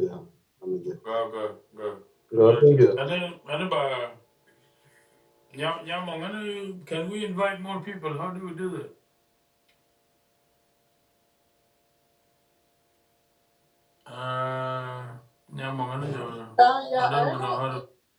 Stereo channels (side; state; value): both; identical; correlation 1.00